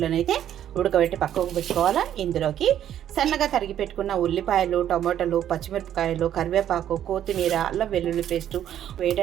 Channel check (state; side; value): quieter; left; 10.7 dB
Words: అయితే ఉడకబెట్టి పక్కకు పెట్టుకోవాలా. ఇందులోకి సన్నగా తరిగి పెట్టుకున్న ఉల్లిపాయలు, టమాటాలు, పచ్చిమిరపకాయలు, కరివేపాకు, కొత్తిమీర, అల్లం వెల్లుల్లి పేస్టు